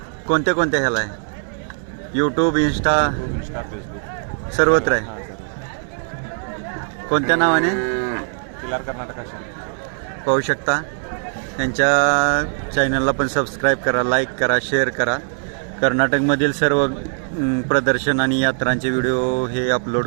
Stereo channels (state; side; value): silent; left; 65 dB below the other